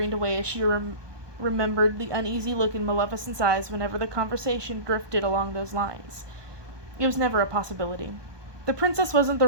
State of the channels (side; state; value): left; late; 1.2 ms